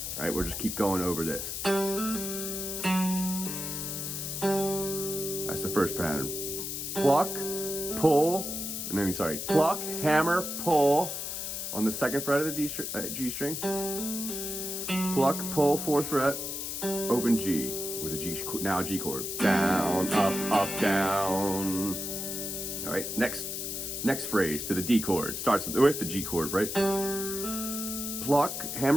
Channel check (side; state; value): left; noise; hiss, 4 dB below the sound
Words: All right, we'll just keep going over this. That's the first pattern. Pluck, pull, pluck, hammer, pull on the 2nd fret of the G string. Pluck, pull, 4th fret, open G with a G chord. Down, up, down. All right, next phrase to the D chord. Starts with the G chord, right? Pluck,